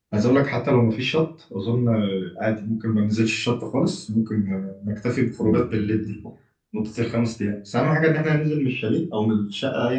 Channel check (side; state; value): both; identical; correlation 1.00